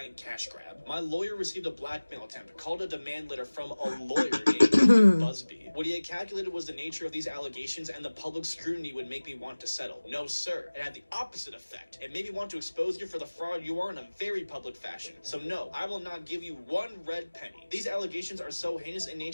cash grab. My lawyer received a blackmail attempt, called a demand letter from a lawyer named Busby. What he had calculated was the nature of these allegations and the public scrutiny would make me want to settle. No, sir. It had the opposite effect. It made me want to expose you for the fraud you are in a very public fashion. So no, I will not give you one red penny. These allegations are so heinous in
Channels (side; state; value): both; inverted; correlation -1.00